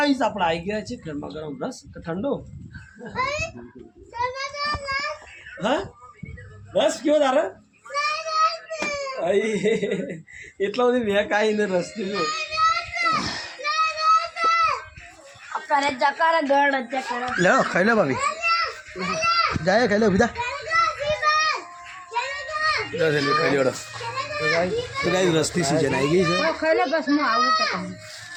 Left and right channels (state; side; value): identical; both; correlation 1.00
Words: આપણે આવી ગયા છે ગરમા ગરમ રસ કે ઠંડો? હા રસ કયો તારે? એટલો બધી મેં કાંઈ ને રસ પીધો. લે ખાઈ લે ભાભી, જાય ખાઈ લે બીજા ખાઈ લે. તો ગાઈ રસની સિઝન આવી ગઈ છે.